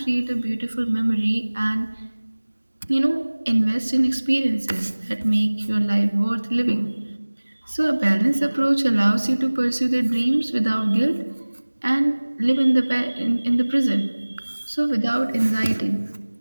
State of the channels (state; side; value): inverted; both; correlation -1.00